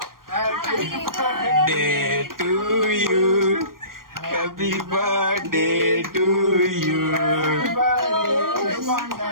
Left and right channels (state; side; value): late; left; 0.91 ms